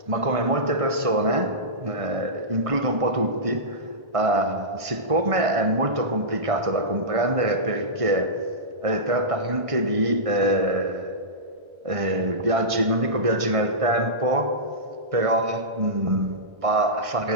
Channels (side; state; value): left; late; 1.5 ms